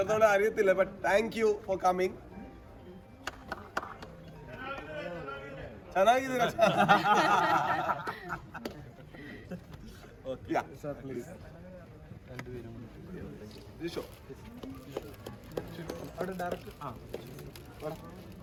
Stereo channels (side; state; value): both; identical; correlation 1.00